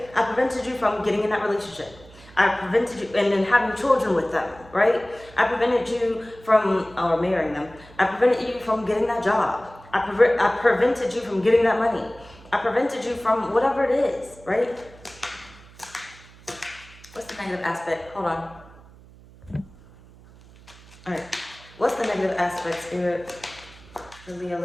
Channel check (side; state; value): right; noise; hum, 22 dB below the sound